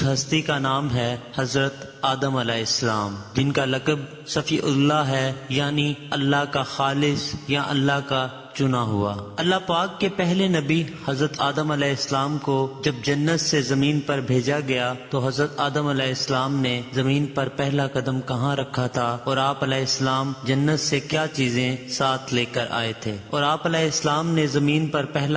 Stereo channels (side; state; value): both; identical; correlation 1.00